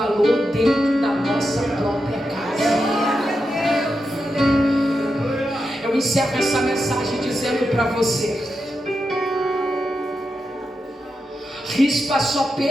dentro da nossa própria casa. Eu encerro essa mensagem dizendo para você: Rispa só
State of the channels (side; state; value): both; normal; correlation 0.87